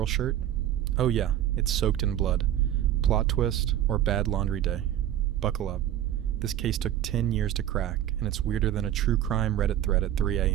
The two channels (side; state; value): left; quieter; 11.7 dB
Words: shirt? Oh yeah, it's soaked in blood. Plot twist or bad laundry day. Buckle up. This case took 10 years to crack, and it's weirder than a true crime Reddit thread at 3